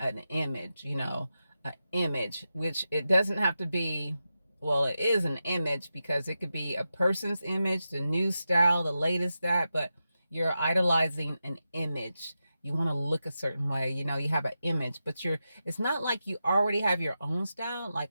image, an image, which it doesn't have to be. Well, it is an image, because it could be a person's image, the new style, the latest that, but you're idolizing an image. You want to look a certain way, you have an image, but it's not like you already have your own style.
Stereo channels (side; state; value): both; inverted; correlation -0.90